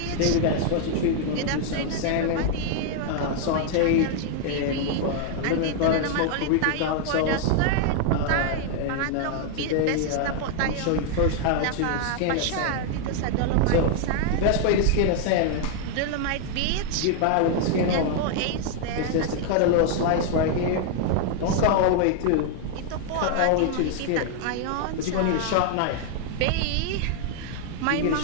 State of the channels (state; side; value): different; both; correlation 0.00